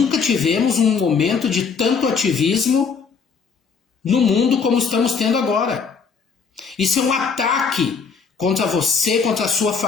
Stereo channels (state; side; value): quieter; right; 5.6 dB